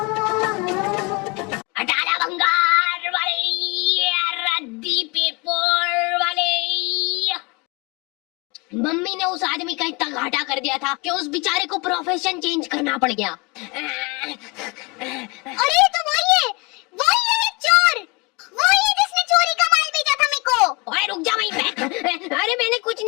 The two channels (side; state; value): right; quieter; 28.0 dB